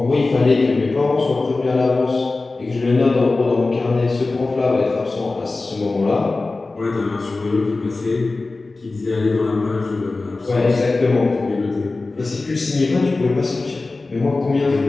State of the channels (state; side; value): quieter; right; 3.5 dB